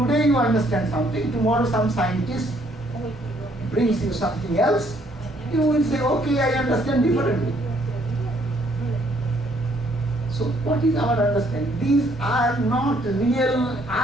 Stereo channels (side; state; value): both; normal; correlation 0.66